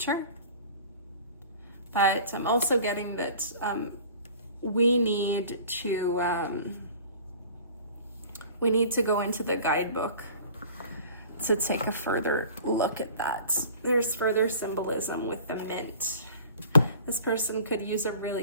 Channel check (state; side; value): inverted; both; correlation -0.44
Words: But I'm also getting that we need to go into the guidebook to take a further look at that. There's further symbolism with the mint. This person could use a